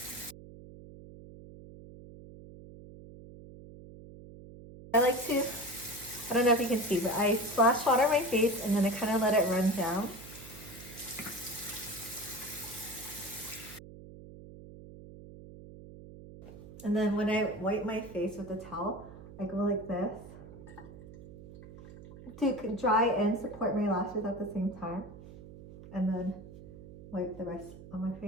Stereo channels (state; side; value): noise; right; hum, 16 dB below the sound